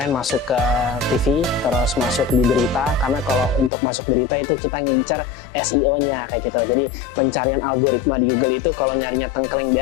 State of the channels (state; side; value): drops out; right; at 3.7 s